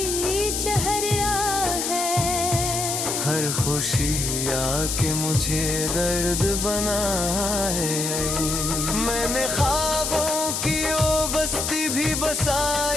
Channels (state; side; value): noise; left; hiss, 1 dB below the sound